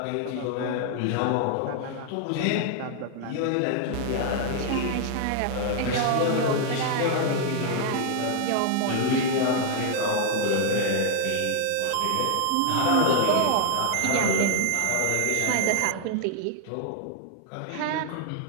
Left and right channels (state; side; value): different; both; correlation 0.00